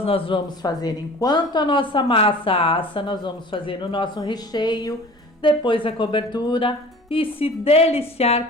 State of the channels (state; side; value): normal; both; correlation 0.43